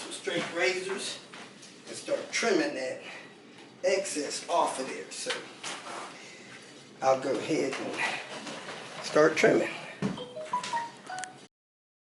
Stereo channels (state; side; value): identical; both; correlation 1.00